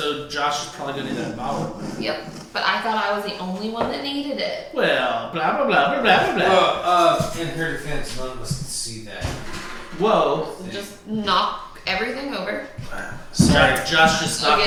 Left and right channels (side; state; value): both; identical; correlation 1.00